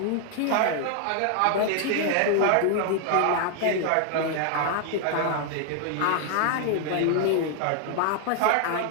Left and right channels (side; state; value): both; different; correlation 0.00